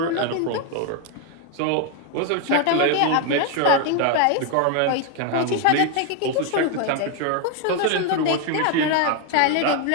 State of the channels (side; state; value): both; different; correlation 0.01